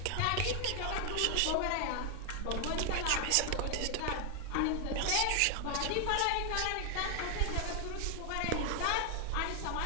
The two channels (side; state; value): both; different; correlation 0.00